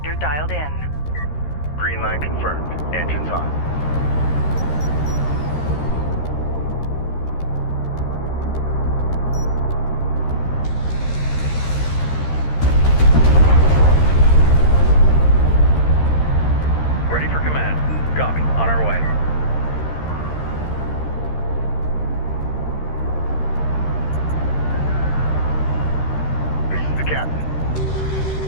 dialed in. Green line confirmed. Engines on. Ready for command. Copy. On our way. This is the captain.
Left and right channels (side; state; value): right; late; 13 ms